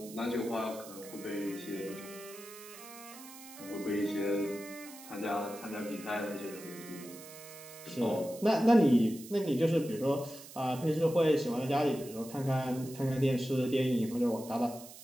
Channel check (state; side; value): noise; right; hiss, 16 dB below the sound